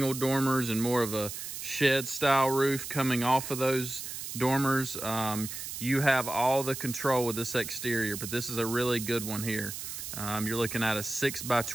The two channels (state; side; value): noise; right; hiss, 7 dB below the sound